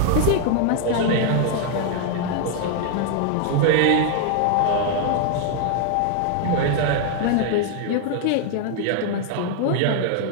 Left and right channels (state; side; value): different; both; correlation 0.00